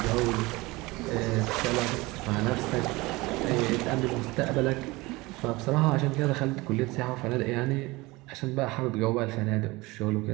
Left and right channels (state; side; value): quieter; left; 22.0 dB